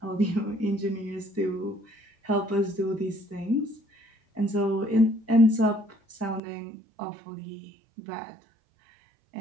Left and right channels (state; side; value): drops out; left; at 6.4 s